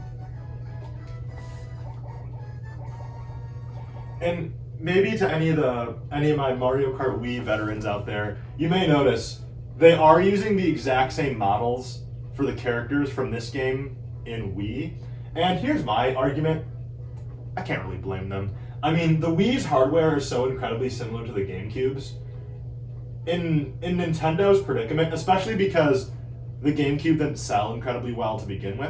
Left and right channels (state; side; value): identical; both; correlation 1.00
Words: And maybe to any of my Mario Kart Wii veterans out there, you may notice they are using the exact same models for the characters from this game in Wii. And here's my argument. I can't really blame them. I mean, the Wii's hardware is so incredibly similar to the GameCube's. In Nintendo's predicament, especially because the GameCube didn't sell incredibly well to begin